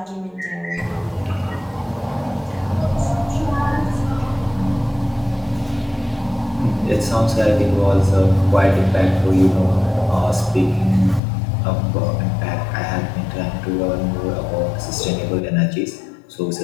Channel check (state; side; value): drops out; right; at 11.2 s